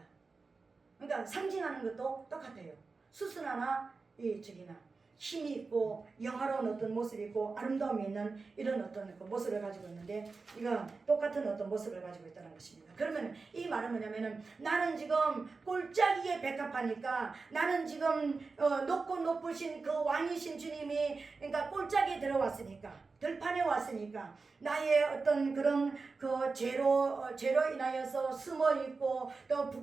그러니까 상징하는 것도 똑같아요. 수순화나 이 힘이 있고 영화로운 어떤 모습이 있고 아름다움이 있는 이런 어떤 그 모습을 가지고 있는데, 이건 똑같은 어떤 모습을 가지고 있다는 것입니다. 그러면 이 말은 뭐냐면은, 나는 지금 골짜기에 백합하니까, 나는 지금 높고 높으신 그 왕이신 주님이, 그러니까 골짜기에 들어왔으니까, 들판에 왔으니까 나의 어떤 그런 그 죄로 인하여서 숨어 있고, 또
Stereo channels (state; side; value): quieter; left; 4.2 dB